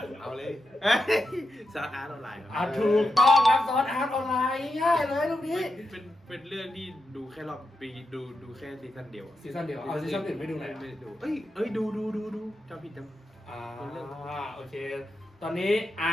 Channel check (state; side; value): normal; both; correlation 0.87